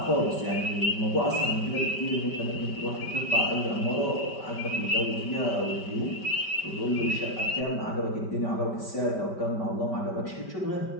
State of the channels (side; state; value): right; late; 5.1 ms